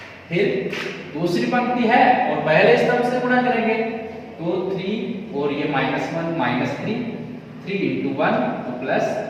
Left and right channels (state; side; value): identical; both; correlation 1.00